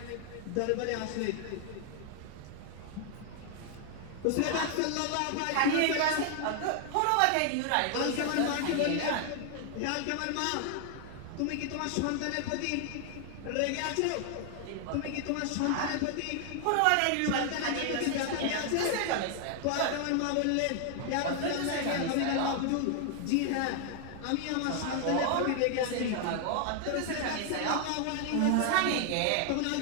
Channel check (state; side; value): different; both; correlation 0.00